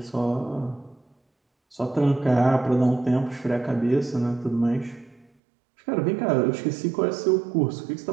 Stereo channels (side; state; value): left; drops out; at 5.3 s